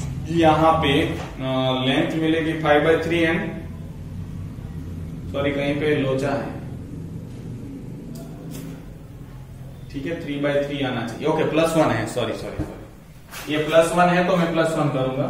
यहां पे लेंथ मिलेगी 5/3 एंड सॉरी कहीं पे लोचा है, ठीक है, 3/3 आना चाहिए, ओके +1 है, सॉरी ये +1 है तो मैं +1 करूंगा,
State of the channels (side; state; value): both; identical; correlation 1.00